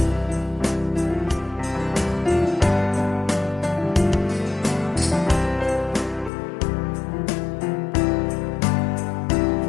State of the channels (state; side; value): drops out; right; at 6.3 s